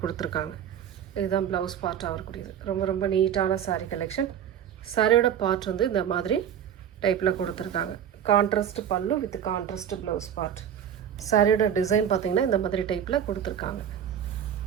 கொடுத்துருக்காங்க. இதுதான் ப்ளவுஸ் பார்ட்டாக வரக்கூடியது. ரொம்ப ரொம்ப நீட்டான சாரீ கலெக்ஷன். சாரியோட பார்ட் வந்து இந்த மாதிரி டைப்பில் கொடுத்துருக்காங்க. கான்ட்ராஸ்ட் பல்லு வித் கான்ட்ராஸ்ட் ப்ளவுஸ் பார்ட். சாரியோட டிசைன் பார்த்திங்கன்னா இந்த மாதிரி டைப்பில் கொடுத்துருக்காங்க.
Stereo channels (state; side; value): quieter; left; 9.2 dB